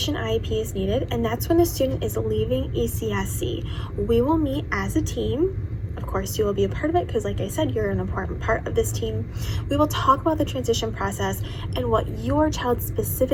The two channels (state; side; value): identical; both; correlation 1.00